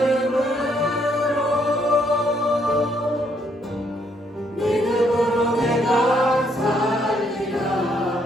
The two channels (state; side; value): normal; both; correlation 0.71